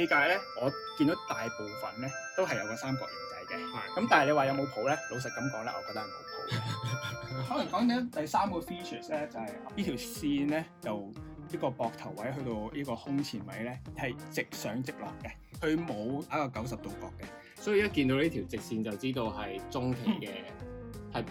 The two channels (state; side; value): identical; both; correlation 1.00